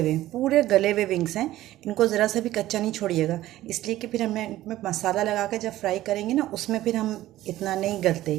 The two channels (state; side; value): quieter; left; 15.0 dB